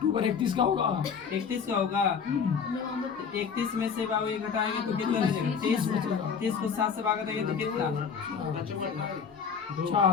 31 का होगा। 31 का होगा। 31 में से बाबू ये घटाएंगे तो कितना रह जाएगा? 30 को 7 से भागा देंगे तो कितना?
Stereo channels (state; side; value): quieter; right; 6.4 dB